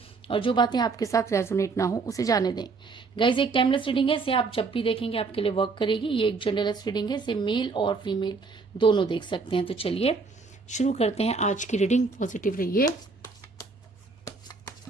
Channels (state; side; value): quieter; left; 4.3 dB